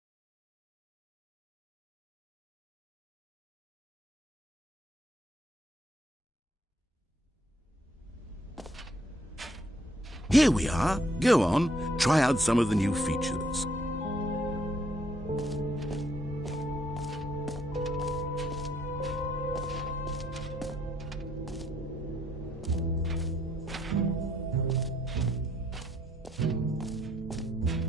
Here we are. Go on, try out some of the new features.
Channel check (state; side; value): normal; both; correlation 0.69